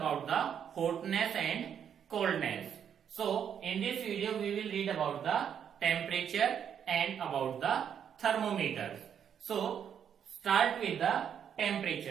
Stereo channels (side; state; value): left; quieter; 8.4 dB